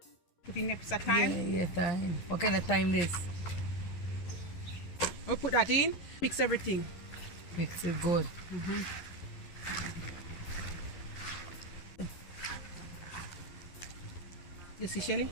Put in extra time. Yeah, time. What kind of time this? We put that in. Mix everything. Mix it good. You see, Shelly?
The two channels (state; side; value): late; right; 11 ms